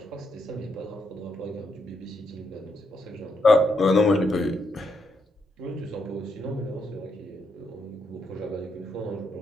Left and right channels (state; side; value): normal; both; correlation 0.79